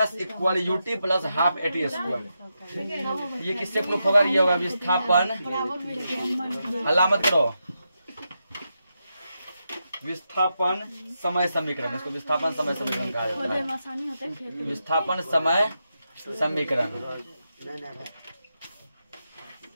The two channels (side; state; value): both; inverted; correlation -0.86